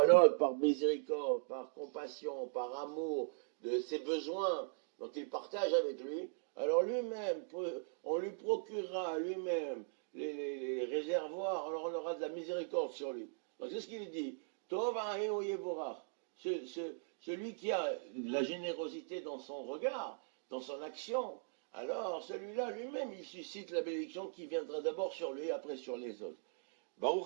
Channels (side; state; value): left; silent; digital silence